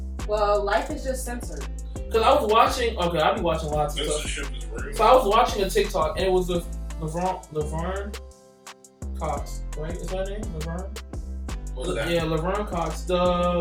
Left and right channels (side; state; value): both; identical; correlation 1.00